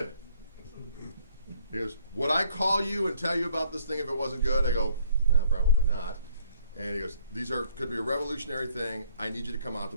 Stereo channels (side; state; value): both; inverted; correlation -0.63